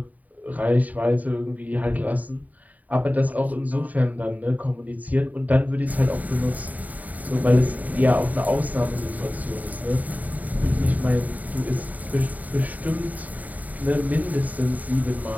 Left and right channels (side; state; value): left; late; 0.076 ms